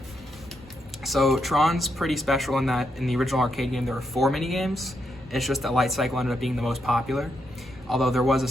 So Tron's pretty special in that in the original arcade game there were 4 mini games. It's just that Light Cycle ended up being the most popular. Although there was a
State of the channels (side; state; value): both; normal; correlation 0.81